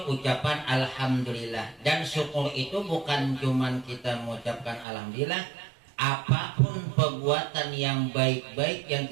ucapan alhamdulillah. Dan syukur itu bukan cuman kita mengucapkan alhamdulillah. Apapun perbuatan yang baik-baik yang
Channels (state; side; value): drops out; left; at 4.9 s